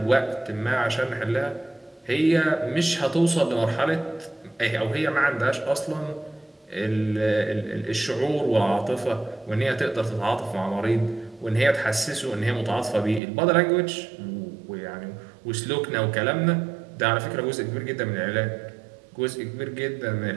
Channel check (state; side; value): drops out; left; at 13.2 s